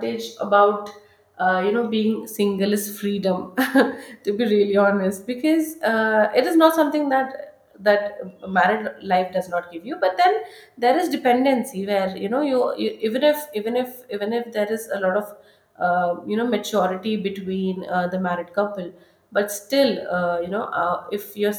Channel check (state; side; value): identical; both; correlation 1.00